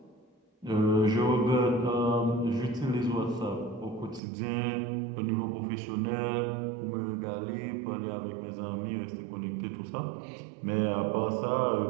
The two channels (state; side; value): drops out; left; at 4.2 s